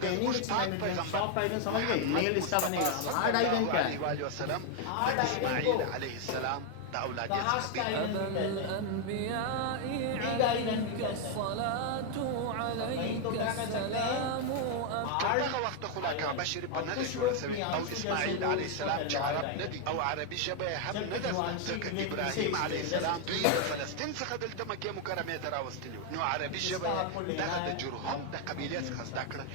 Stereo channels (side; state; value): both; different; correlation 0.01